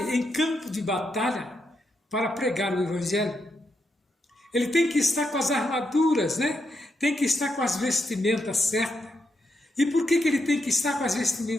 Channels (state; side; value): normal; both; correlation 0.81